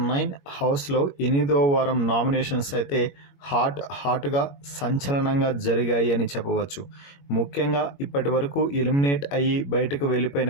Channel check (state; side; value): late; right; 21 ms